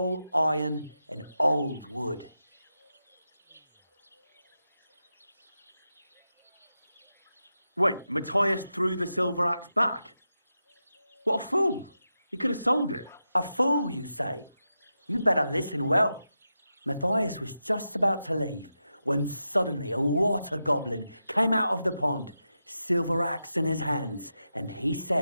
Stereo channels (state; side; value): inverted; both; correlation -0.89